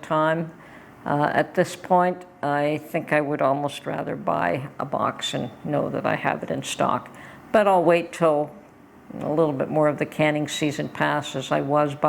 At this point, I think I would almost rather buy a box and know that I have it in stock. But I'll wait till a little bit more of the canning season passes. I was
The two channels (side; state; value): both; identical; correlation 1.00